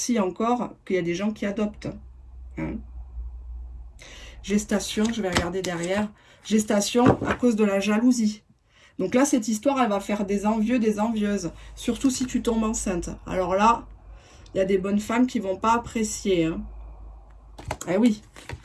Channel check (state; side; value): identical; both; correlation 1.00